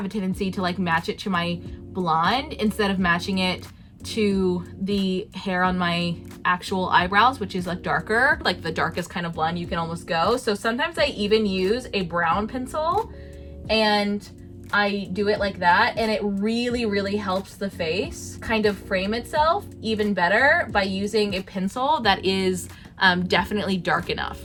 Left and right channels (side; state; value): both; identical; correlation 1.00